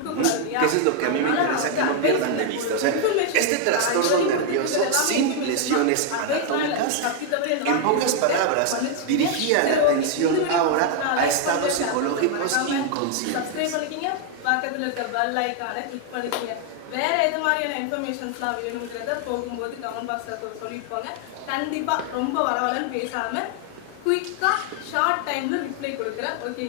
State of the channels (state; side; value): different; both; correlation 0.00